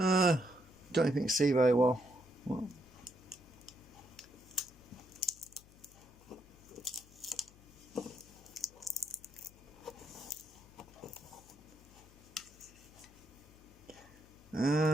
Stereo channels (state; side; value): noise; left; hum, 23 dB below the sound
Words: Don't even see very well.